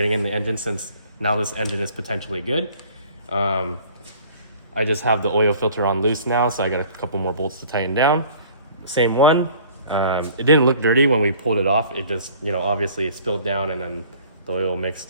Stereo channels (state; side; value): inverted; both; correlation -0.51